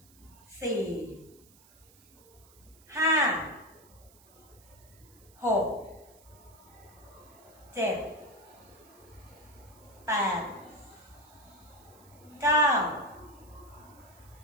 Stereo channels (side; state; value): right; noise; hiss, 25 dB below the sound